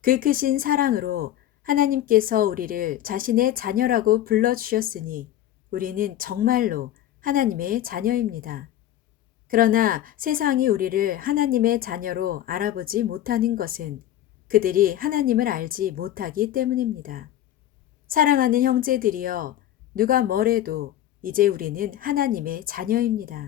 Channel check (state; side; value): quieter; right; 12.6 dB